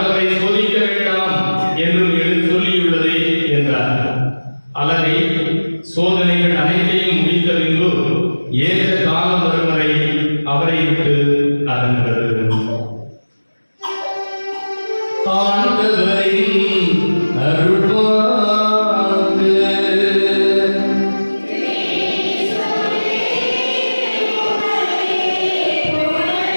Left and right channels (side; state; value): both; inverted; correlation -1.00